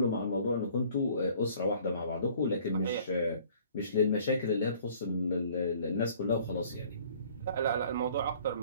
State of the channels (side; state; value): both; inverted; correlation -0.54